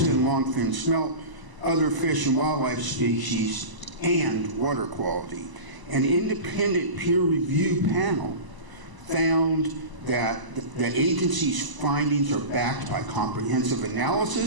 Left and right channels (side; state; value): left; late; 1.0 ms